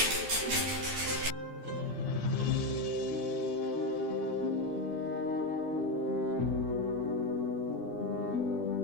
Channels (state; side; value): late; left; 12 ms